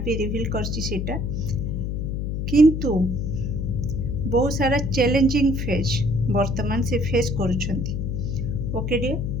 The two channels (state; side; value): noise; left; hum, 2 dB below the sound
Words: भी रिवील करछि सेटा किंतु बहुत सारा चैलेंजिंग फेज वर्तमान से फेस करूछंती। ओके डियर